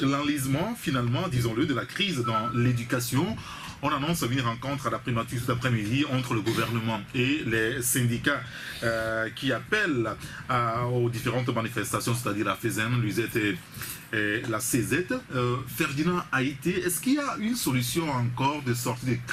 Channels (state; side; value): identical; both; correlation 1.00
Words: finalement, disons-le, de la crise dans l'éducation. On annonce une rencontre à la primature cet après-midi entre le gouvernement et les syndicats qui appellent aux différentes manifestations, c'est-à-dire la FESEN, l'UZET et la CZ. Ferdinand Aïté, est-ce qu'il y a une solution encore de sortie de